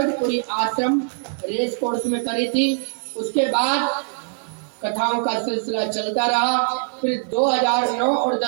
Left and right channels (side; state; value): left; silent; digital silence